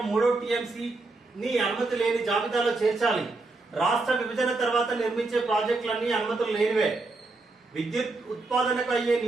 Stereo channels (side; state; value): left; quieter; 3.4 dB